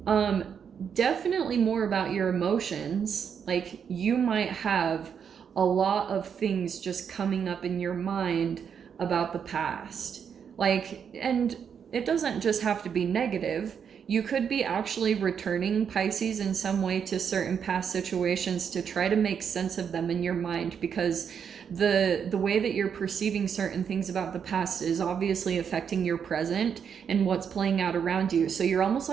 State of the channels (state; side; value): quieter; left; 7.4 dB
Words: definitely more about your emotions. Like, you might have a lot of things just coming up in your mind about the past. Like, and it doesn't just have to be negative. You could be actually returning, Pisces, in some way to certain past situations to try to make sense of them in your mind, because the way that you're perceiving certain things about the past is obviously affecting your present and what's playing out around you. So you're almost